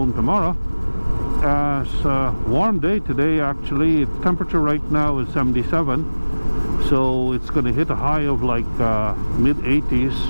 tomorrow. It's a warm day today. Actually, its temperature right now is 77, so it's going to hit a high of like mid 80s,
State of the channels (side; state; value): both; inverted; correlation -1.00